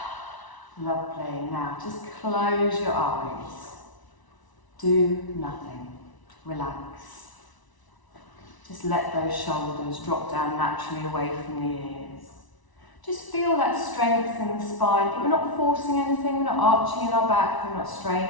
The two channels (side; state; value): right; late; 1.0 ms